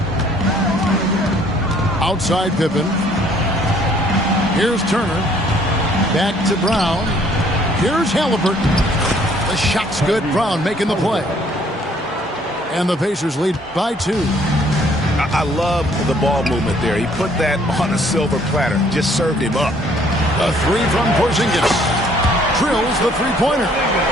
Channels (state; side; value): normal; both; correlation 0.61